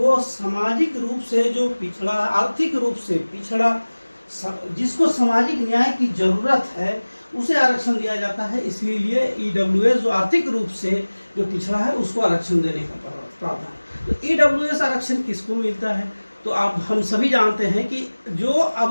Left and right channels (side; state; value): both; inverted; correlation -1.00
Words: सामाजिक रूप से जो पिछड़ा, आर्थिक रूप से पिछड़ा, जिसको सामाजिक न्याय की जरूरत है उसे आरक्षण दिया जाता है। इसलिए ईडब्ल्यूएस जो आर्थिक रूप से जो पिछड़ा है उसको आरक्षण देने का प्रावधान। तो ईडब्ल्यूएस आरक्षण किसको मिलता है, तो आप हम सभी जानते हैं कि जो